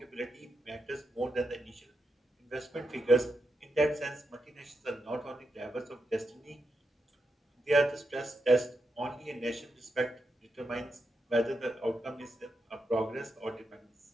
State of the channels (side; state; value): both; normal; correlation 0.85